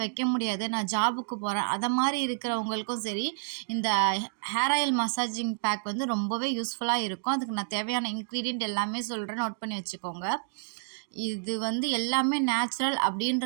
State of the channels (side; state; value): left; silent; digital silence